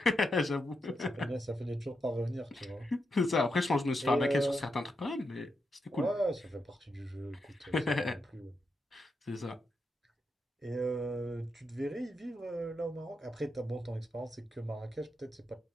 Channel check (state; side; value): normal; both; correlation 0.85